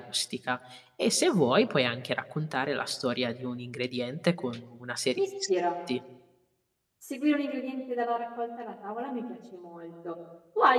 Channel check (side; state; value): both; identical; correlation 1.00